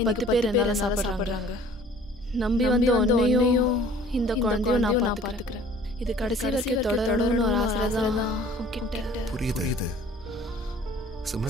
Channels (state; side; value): normal; both; correlation 0.51